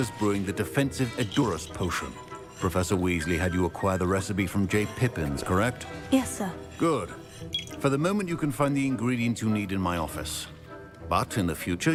brewing the defensive Edurus potion. Professor Weasley had you acquire the recipe from J. Pippins, correct? Yes, sir. Good. For the moment, you can find the ingredients you need in my office. But in the future,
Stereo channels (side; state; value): both; identical; correlation 1.00